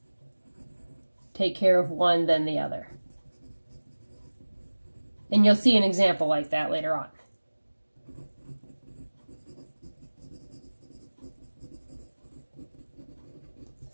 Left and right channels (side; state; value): both; inverted; correlation -1.00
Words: take care of one, then the other. And you'll see an example like that later on.